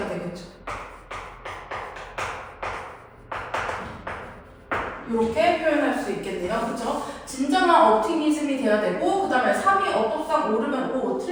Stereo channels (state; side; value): identical; both; correlation 1.00